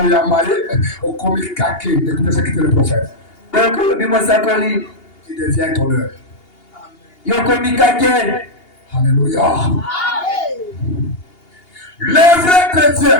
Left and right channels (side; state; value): right; late; 2.8 ms